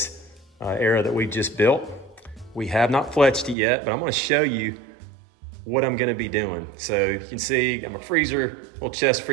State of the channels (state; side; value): drops out; left; at 3.6 s